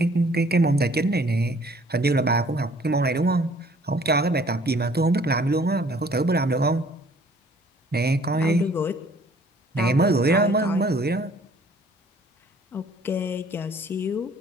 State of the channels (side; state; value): both; normal; correlation 0.56